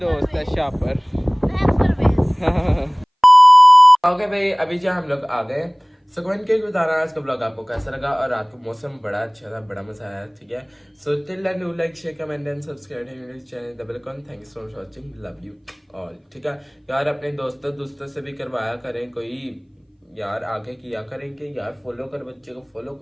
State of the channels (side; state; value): both; identical; correlation 1.00